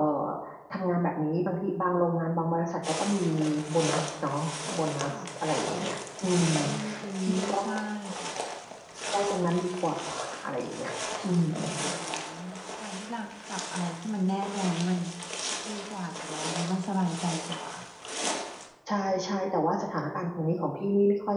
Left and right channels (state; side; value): identical; both; correlation 1.00